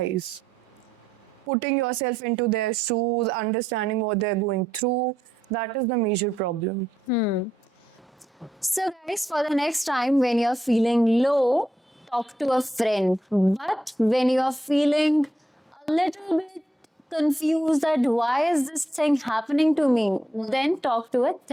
putting yourself into their shoes, understanding what they're going through. That is the major problem. So, guys, for the next time when you're feeling low, talk to a friend. But when you're feeling a little bit confused that why is this thing happening to me, then talk to a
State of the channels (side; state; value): both; normal; correlation 0.80